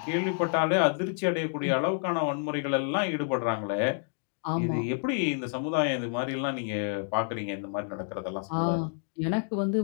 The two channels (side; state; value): right; silent; digital silence